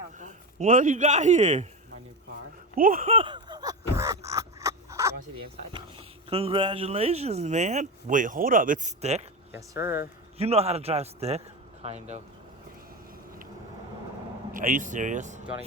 Uncle. What do you got here? My new car. What? You want to see the inside? Congratulations, man. Wait, hold up. It's stick? Yes, sir. You know how to drive stick? Kind of. Are you serious? Do you want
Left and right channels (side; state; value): both; normal; correlation 0.20